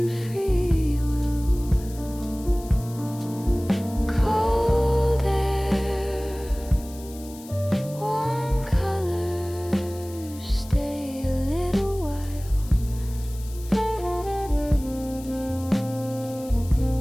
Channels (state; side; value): noise; left; hiss, 19 dB below the sound